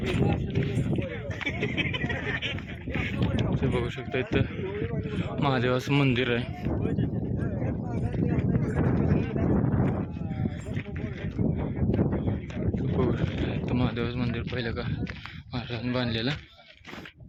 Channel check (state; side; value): identical; both; correlation 1.00